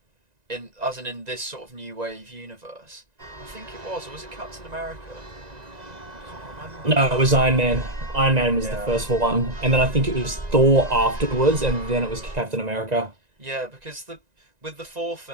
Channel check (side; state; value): left; late; 1.9 ms